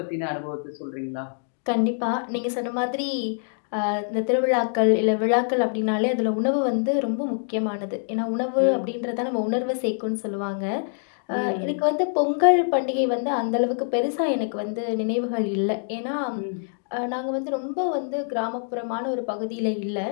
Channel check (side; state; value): right; silent; digital silence